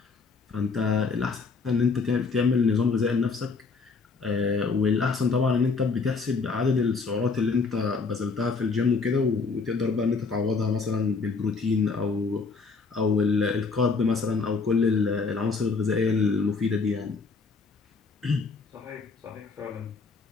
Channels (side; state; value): right; quieter; 4.5 dB